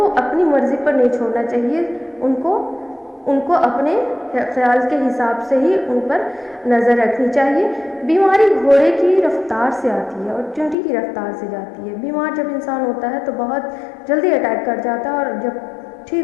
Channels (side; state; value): right; drops out; at 10.8 s